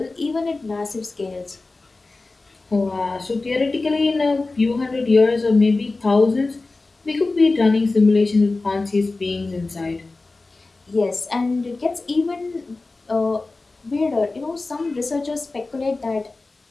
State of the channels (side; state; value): right; quieter; 3.4 dB